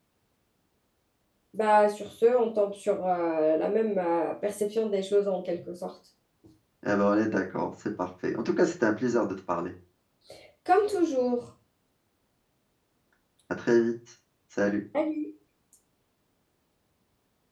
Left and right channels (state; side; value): identical; both; correlation 1.00